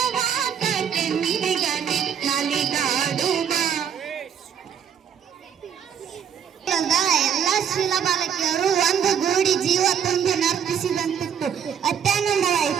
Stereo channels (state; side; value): quieter; left; 8.1 dB